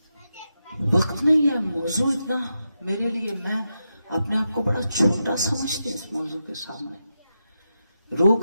وقت نہیں ہے، موضوع اتنا میرے لیے، میں اپنے آپ کو بڑا چھوٹا سمجھتی ہوں اس موضوع کے سامنے. رو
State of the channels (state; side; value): inverted; both; correlation -0.88